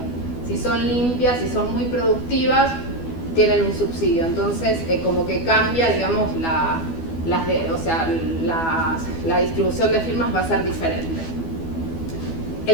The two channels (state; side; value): late; right; 12 ms